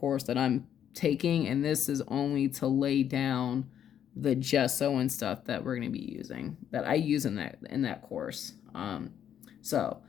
that I'm taking, and this is only to lay down the gesso and stuff that we're going to be using, that I use in that course. So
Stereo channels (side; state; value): right; quieter; 9.5 dB